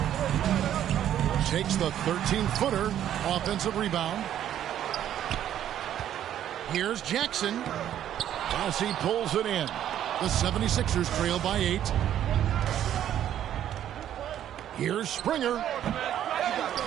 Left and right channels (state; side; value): quieter; left; 10.9 dB